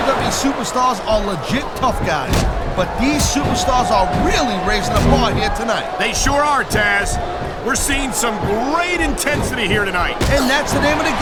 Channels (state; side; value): identical; both; correlation 1.00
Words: superstars are legit tough guys. But these superstars are really raising the bar here tonight. They sure are, Taz. We're seeing some great intensity here tonight. And that's the name of the